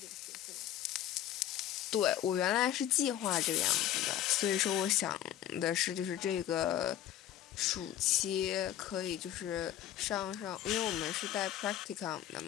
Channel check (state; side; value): quieter; right; 11.9 dB